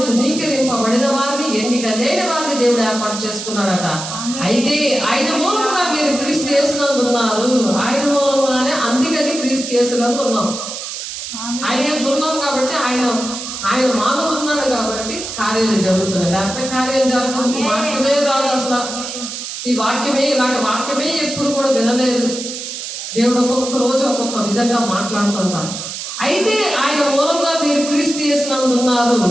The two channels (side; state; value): right; noise; hiss, 7 dB below the sound